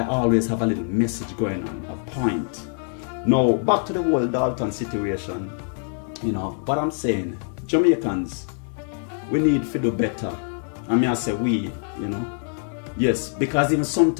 always have a little message going on, a point. Now, back to the whole Dalton situation. What I'm saying, Jamaicans, we need to do better. I mean, I say we, Yes, because even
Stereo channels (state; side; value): silent; right; 56 dB below the other